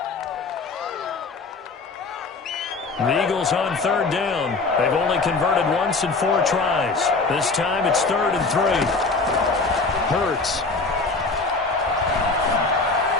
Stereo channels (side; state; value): right; quieter; 3.8 dB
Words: The Eagles on third down. They've only converted once in 4 tries. This time it's 3rd and 3. Hurts.